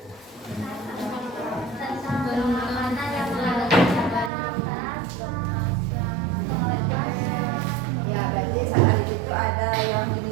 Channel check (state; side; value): drops out; left; at 4.3 s